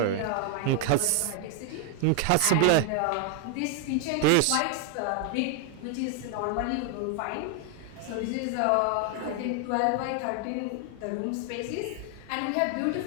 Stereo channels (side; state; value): both; different; correlation 0.00